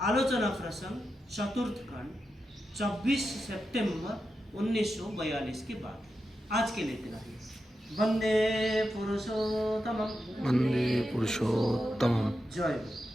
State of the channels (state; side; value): normal; both; correlation 0.89